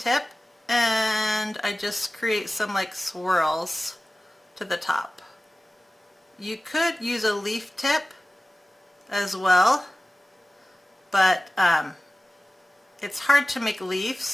and I just create some like swirls to the top. You could use a leaf tip as well, but it's hard to make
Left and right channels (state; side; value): normal; both; correlation 0.96